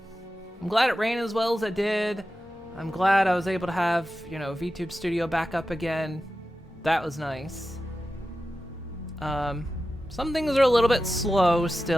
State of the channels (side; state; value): both; normal; correlation 0.93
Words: glad it ran as well as it did. I'm glad I was able to have, you know, VTube Studio back up again. That was nice. Some things are a little bit slow